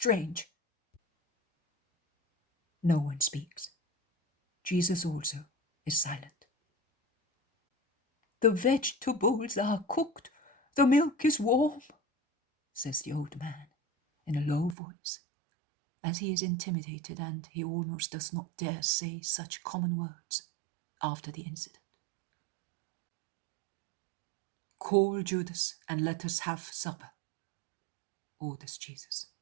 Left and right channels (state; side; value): drops out; left; at 14.8 s